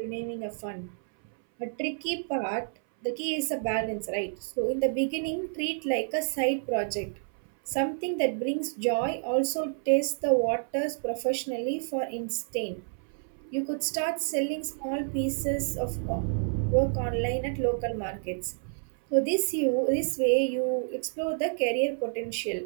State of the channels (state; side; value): silent; left; 58 dB below the other